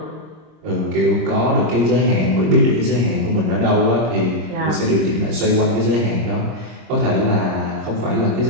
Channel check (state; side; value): late; left; 26 ms